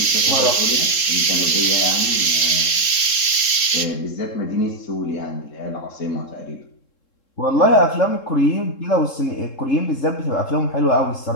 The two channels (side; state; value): right; late; 3.7 ms